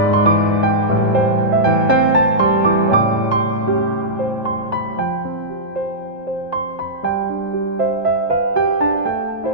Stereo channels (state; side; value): normal; both; correlation -0.13